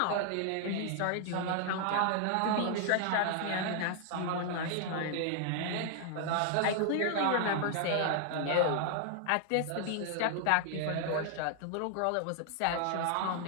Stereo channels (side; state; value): both; different; correlation 0.00